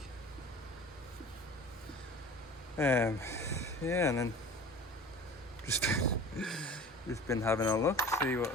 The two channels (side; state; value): both; normal; correlation 0.40